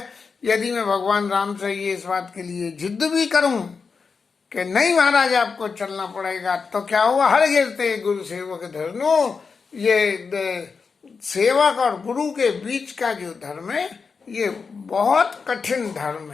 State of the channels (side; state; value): right; quieter; 5.2 dB